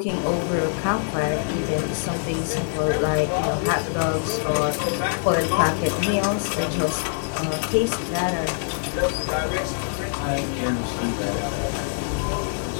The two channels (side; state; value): right; silent; 56 dB below the other